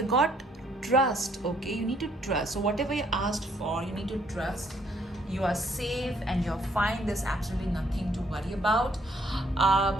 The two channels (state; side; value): normal; both; correlation 0.66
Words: got trust. Okay, you need to trust. So whatever you asked for, you need to trust. You are safe and you're fine. There's absolutely nothing to worry about.